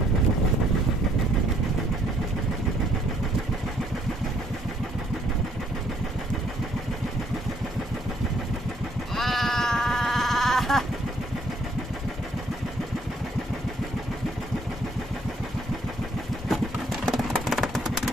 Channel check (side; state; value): both; normal; correlation 0.66